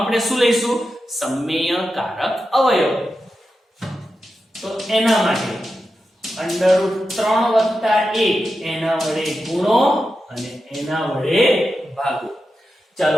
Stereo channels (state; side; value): normal; both; correlation 0.90